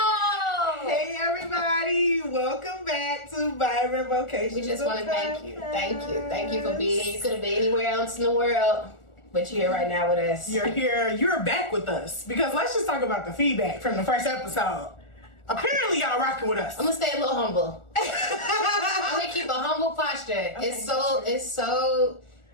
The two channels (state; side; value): late; right; 1.4 ms